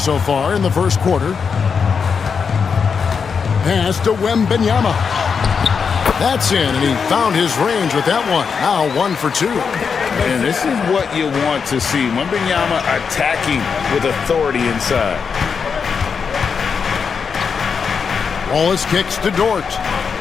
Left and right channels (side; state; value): right; quieter; 6.0 dB